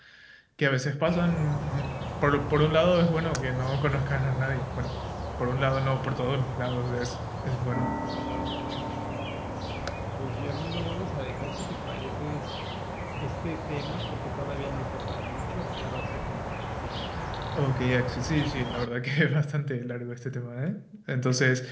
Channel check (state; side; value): identical; both; correlation 1.00